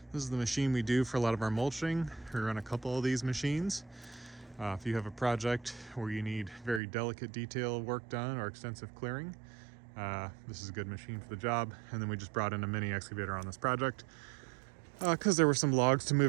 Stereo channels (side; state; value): left; drops out; at 6.8 s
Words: This is the machine we do for a lot of our mulching. We run a couple of these machines. If you have a project where you need very delicate detail work done or extensive clearing, this is a good machine for the job. And then we just brought in a mini excavator on this project because there were some logs to